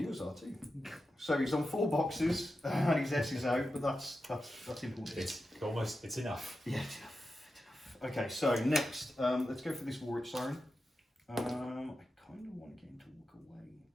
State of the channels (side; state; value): both; normal; correlation 0.90